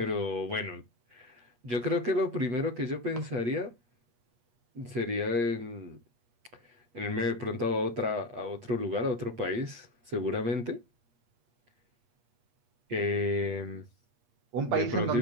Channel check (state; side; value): late; left; 8.4 ms